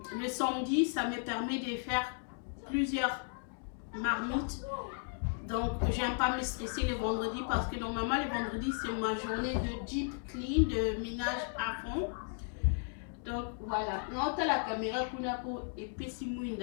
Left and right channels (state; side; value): silent; right; 54 dB below the other